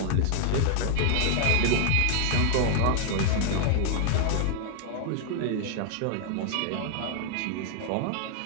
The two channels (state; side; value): different; both; correlation 0.00